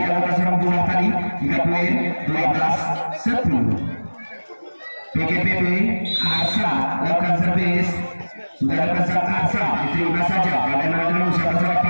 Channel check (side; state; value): both; inverted; correlation -1.00